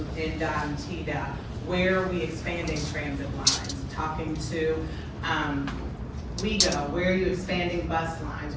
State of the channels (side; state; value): both; identical; correlation 1.00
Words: NDOT and TDOT. Where are we expanding transit lines? Talking to WeGo, where are you expanding bus lines?